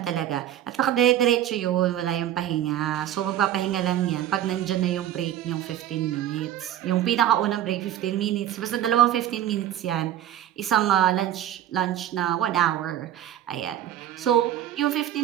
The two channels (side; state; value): left; quieter; 11.6 dB